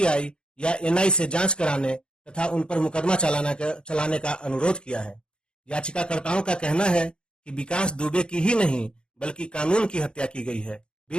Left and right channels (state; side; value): late; right; 0.052 ms